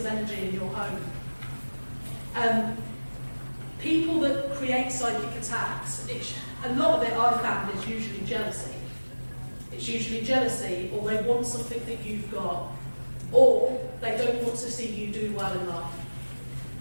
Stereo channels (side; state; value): both; inverted; correlation -1.00